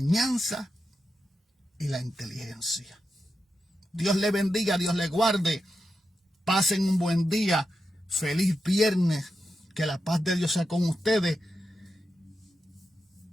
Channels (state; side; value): normal; both; correlation 0.88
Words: y la inteligencia. Dios le bendiga, Dios le guarde. Pasen un buen día. Feliz viernes. Que la paz de Dios sea con ustedes.